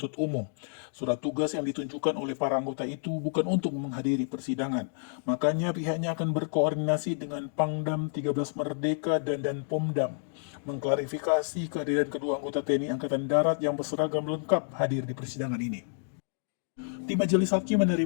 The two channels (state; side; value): silent; right; digital silence